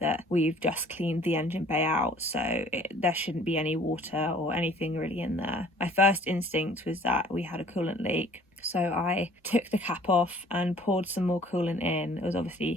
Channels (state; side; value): normal; both; correlation 0.54